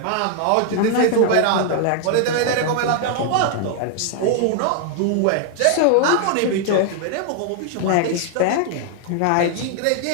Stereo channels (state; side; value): different; both; correlation 0.00